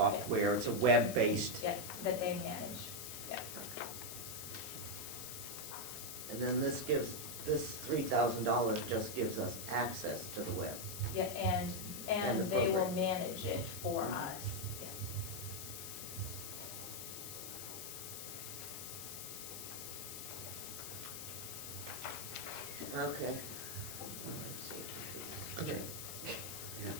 it's a web-based. Yeah, that they manage, yeah. And then this $3,000 just gives us access to the web. Yeah, And the and they will program. manage it for us, yeah. Okay. Okay. Yeah,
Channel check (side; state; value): left; noise; hiss, 7 dB below the sound